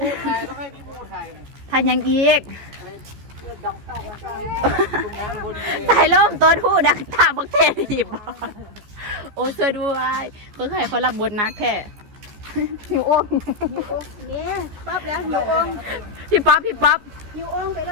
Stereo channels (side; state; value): left; late; 14 ms